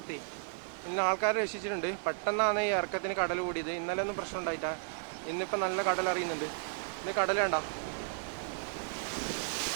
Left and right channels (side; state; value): left; silent; 55 dB below the other